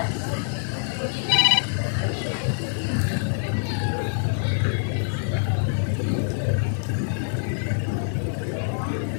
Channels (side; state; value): right; silent; digital silence